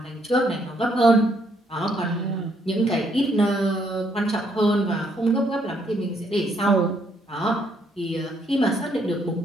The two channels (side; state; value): both; normal; correlation 0.71